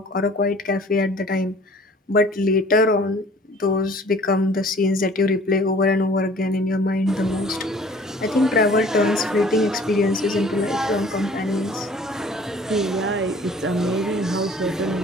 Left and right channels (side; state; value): both; normal; correlation 0.51